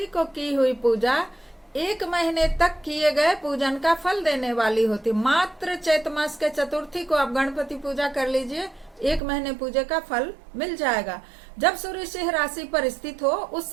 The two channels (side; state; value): left; drops out; at 9.2 s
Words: को की हुई पूजा 1 महीने तक किए गए पूजन का फल देने वाली होती। मात्र चैत्र मास के चतुर्थी को आप गणपति पूजा कर लीजिए, 1 महीने पूजे का फल मिल जाएगा। जब सूर्य सिंह राशि पर स्थित हो उस